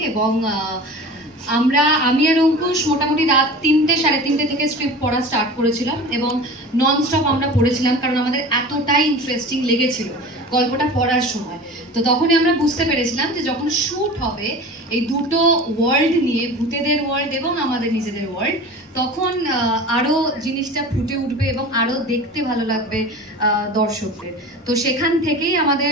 এবং আমি আর অঙ্কুশ মোটামুটি রাত 3টে সাড়ে 3টে থেকে স্ক্রিপ্ট পড়া স্টার্ট করেছিলাম এবং নন স্টপ আমরা পড়েছিলাম, কারণ আমাদের এতটাই ইন্টারেস্টিং লেগেছিল গল্পটা পড়ার সময়। তো তখনই আমরা বুঝতে পেরেছিলাম যে যখন শ্যুট হবে এই দুটো ওয়ার্ল্ড নিয়ে, ভূতেদের ওয়ার্ল্ড এবং আমাদের নিজেদের ওয়ার্ল্ড, তখন আরো জিনিসটা ফুটে উঠবে এবং আরো দেখতে ভালো লাগবে দর্শকদের। তো সেখান থেকেই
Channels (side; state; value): both; normal; correlation 0.36